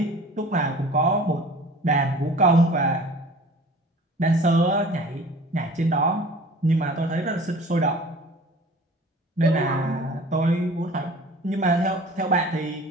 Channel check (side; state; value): both; normal; correlation 0.44